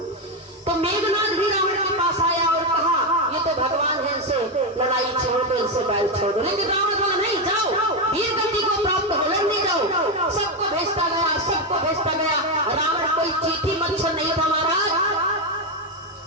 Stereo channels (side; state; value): both; normal; correlation 0.07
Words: तो मेघनाथ भी रावण के पास आया और कहा ये तो भगवान है, इनसे लड़ाई छोड़ दो, इनसे बैल छोड़ दो। लेकिन रावण बोला नहीं जाओ, वीर गति को प्राप्त हो लड़ने जाओ। सबको भेजता गया, सबको भेजता गया। रावण कोई चीठी मच्छर नहीं था महाराज।